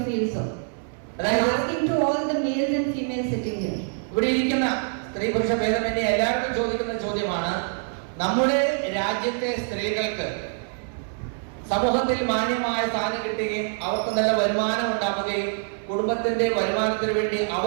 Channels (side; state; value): left; silent; 59 dB below the other